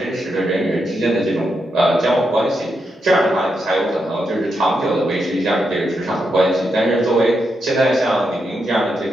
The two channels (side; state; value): both; normal; correlation 0.83